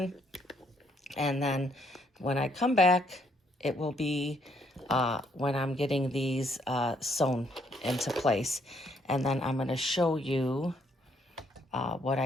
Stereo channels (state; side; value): normal; both; correlation 0.70